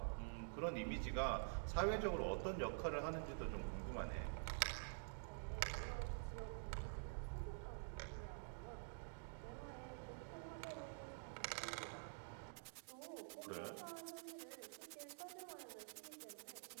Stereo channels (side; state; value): left; silent; digital silence